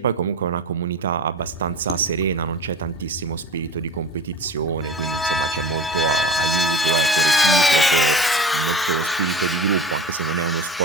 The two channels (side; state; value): both; normal; correlation 0.36